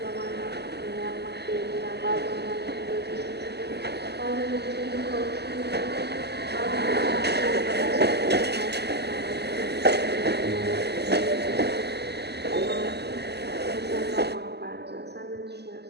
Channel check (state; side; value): late; left; 0.49 ms